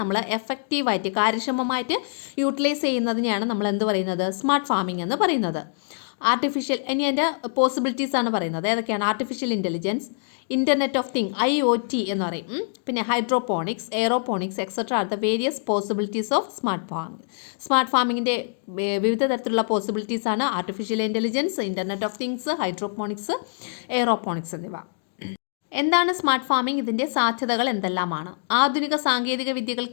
എഫക്റ്റീവായിട്ട് കാര്യക്ഷമമായിട്ട് യൂട്ടിലൈസ് ചെയ്യുന്നതിനെയാണ് നമ്മൾ എന്ത് പറയുന്നത്? സ്മാർട്ട് ഫാമിംഗ് എന്ന് പറയുന്നത്. ഇനി അതിൻ്റെ പോസിബിലിറ്റീസ് ആണ് പറയുന്നത്. ഏതൊക്കെയാണ്? Artificial intelligence, internet of thing IoT എന്ന് പറയും, പിന്നെ hydroponics, aeroponics etcetera are the various possibilities of smart farming. Smart ഫാമിങ്ങിൻ്റെ വിവിധ തരത്തിലുള്ള പോസിബിലിറ്റീസ് ആണ് artificial intelligence, internet of things, hydroponics, aeroponics എന്നിവ. എന്താണ് സ്മാർട്ട് ഫാമിംഗ്? ഇതിൻ്റെ സാധ്യതകൾ എന്തെല്ലാമാണ്? ആധുനിക സാങ്കേതിക വിദ്യകൾ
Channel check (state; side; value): silent; right; digital silence